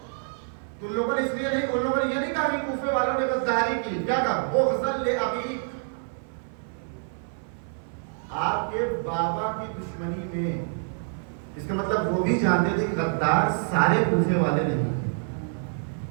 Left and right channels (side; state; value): left; silent; 56 dB below the other